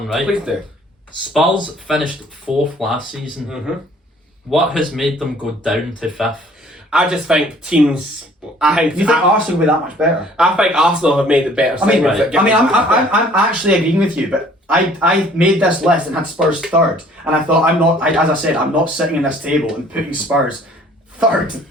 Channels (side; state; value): both; normal; correlation 0.56